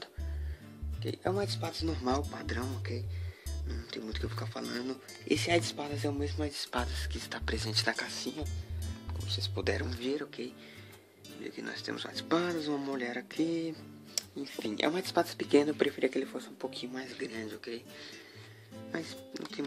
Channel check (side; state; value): both; identical; correlation 1.00